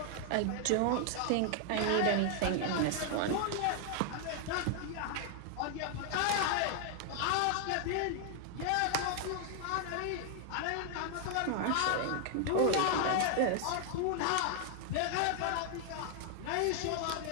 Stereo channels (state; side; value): different; both; correlation 0.00